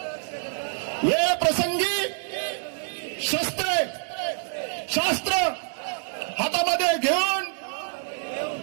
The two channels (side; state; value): left; silent; 61 dB below the other